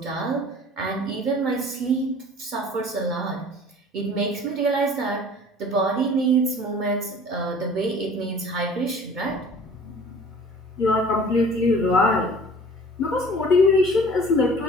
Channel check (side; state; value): both; normal; correlation 0.46